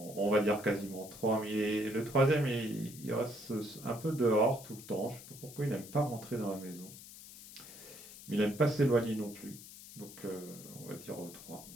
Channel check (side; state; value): left; noise; hiss, 16 dB below the sound